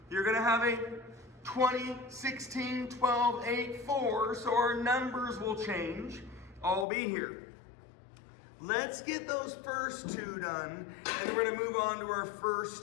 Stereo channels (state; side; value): drops out; right; at 6.9 s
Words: You're gonna have a 20, 16, 12, 8, 4, so our numbers will change. I'll be here. Let's get those first 2 done, and we're gonna move on to our